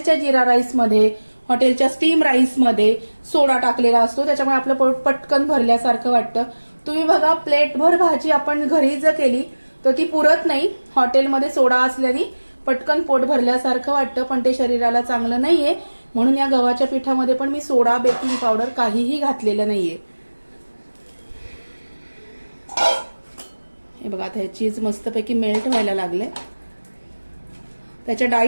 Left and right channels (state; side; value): inverted; both; correlation -1.00